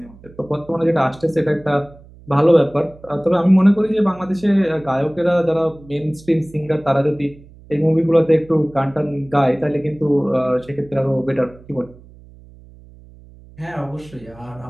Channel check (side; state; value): right; noise; hum, 23 dB below the sound